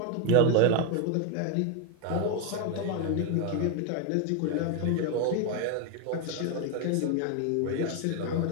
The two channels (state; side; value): different; both; correlation 0.01